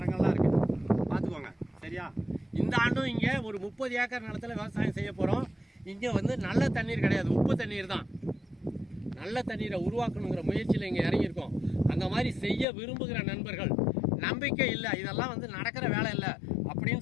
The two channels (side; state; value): right; drops out; at 12.7 s